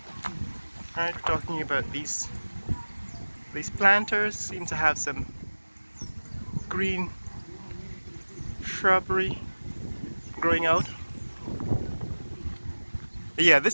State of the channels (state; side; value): inverted; both; correlation -1.00